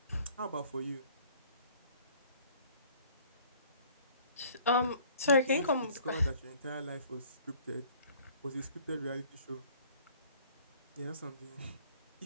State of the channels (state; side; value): inverted; both; correlation -0.54